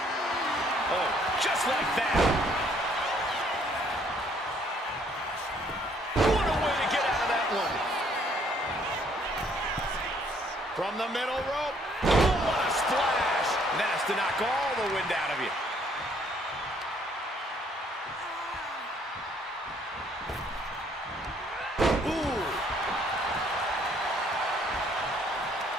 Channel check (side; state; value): both; normal; correlation 0.64